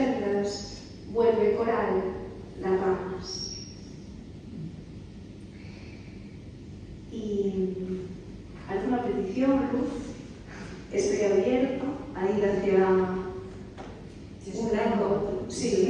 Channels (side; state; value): both; identical; correlation 1.00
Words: vuelve coral las ramas. ¿Y alguna petición, Luz? Estoy abierto a ir hacia yo